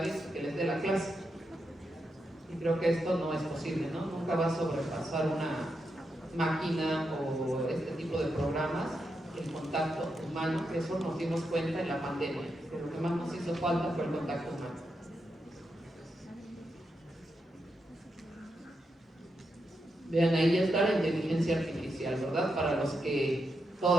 que les dé la clase. Y creo que esto no es posible, ¿no? Nunca va a sobrepasar una máquina o este tipo de programas el contacto humano. Eso nos dimos cuenta en la pandemia, que lo que más nos hizo falta fue el contacto humano. Vean, ahí ya está la inteligencia artificial, ¿verdad? Para los que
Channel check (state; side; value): normal; both; correlation 0.85